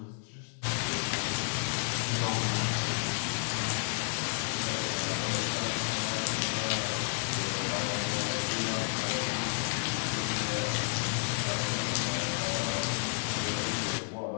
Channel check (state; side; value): silent; right; digital silence